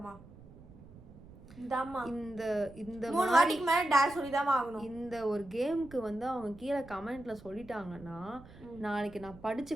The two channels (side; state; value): right; noise; rumble, 20 dB below the sound